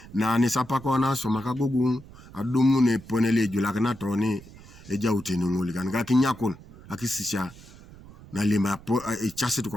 Na nisapako na soma Agogong adumu ne ponele julakina toni eja utenunguli kanika kinyakon akisisha na lima chase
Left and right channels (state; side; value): noise; right; rumble, 19 dB below the sound